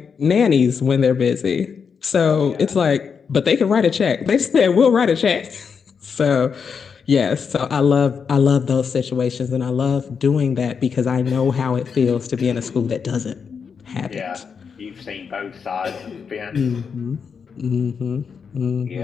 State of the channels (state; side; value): quieter; right; 6.2 dB